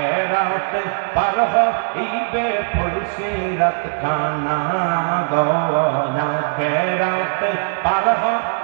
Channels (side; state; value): left; silent; digital silence